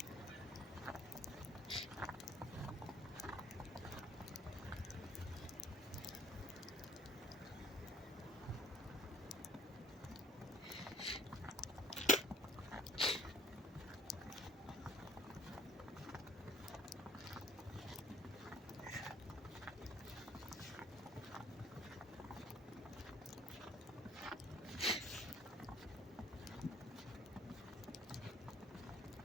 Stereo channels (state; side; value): normal; both; correlation 0.56